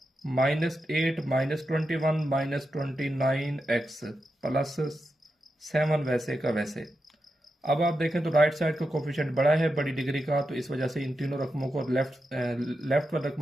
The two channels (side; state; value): both; normal; correlation 0.88